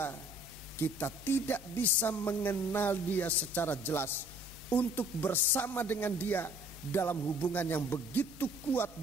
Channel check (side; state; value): both; normal; correlation 0.56